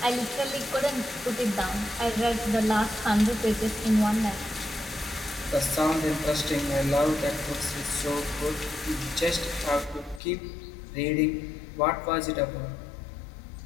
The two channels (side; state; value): right; drops out; at 10.2 s